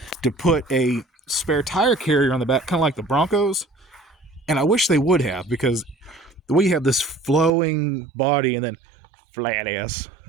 to put a spare tire carrier on the back, kind of like the Broncos, and I wish they would have, because the way you have this flowing body and then flat ass,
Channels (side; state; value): left; drops out; at 7.5 s